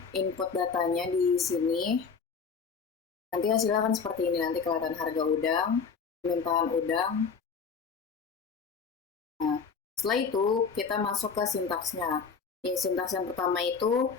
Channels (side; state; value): right; quieter; 5.7 dB